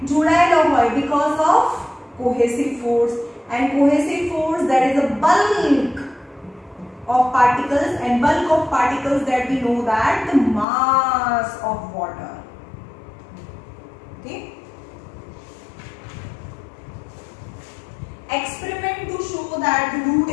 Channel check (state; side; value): drops out; right; at 10.7 s